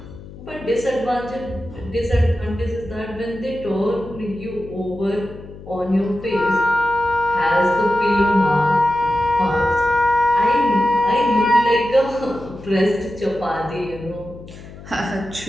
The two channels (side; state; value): left; noise; hum, 16 dB below the sound